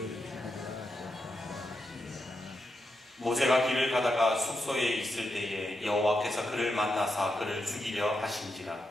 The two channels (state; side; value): normal; both; correlation 0.85